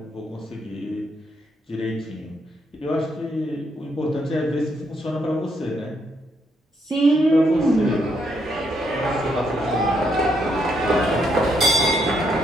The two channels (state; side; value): normal; both; correlation 0.75